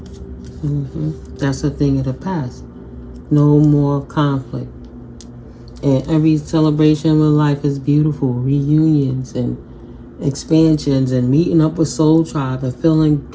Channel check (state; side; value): identical; both; correlation 1.00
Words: That's a thing of the past. No more conflict. And every celebration of life is beautiful. Reunions and expansions and meeting up with soul tribe and feeling